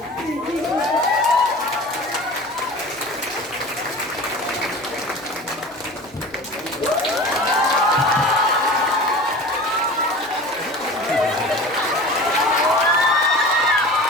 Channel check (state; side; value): noise; left; hum, 29 dB below the sound